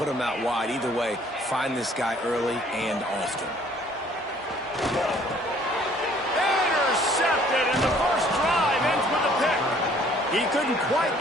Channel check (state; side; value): normal; both; correlation 0.58